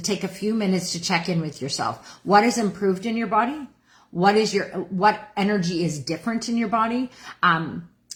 take a few minutes to check in with yourself. What has improved in your body? What energy is different in your body?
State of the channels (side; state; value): both; identical; correlation 1.00